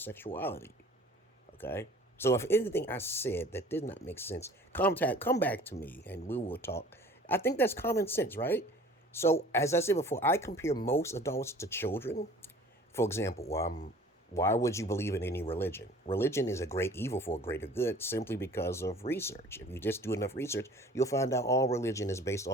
Okay? So if anything I said that did not make sense, come back to me and we will talk. I think that's common sense, right? So as I said before, I compare most adults to children. For example, why would you believe in any religion? Religion is a great evil for a greater good simply because of research. If you just do enough research, you'll find out all religion is based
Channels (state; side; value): normal; both; correlation 0.48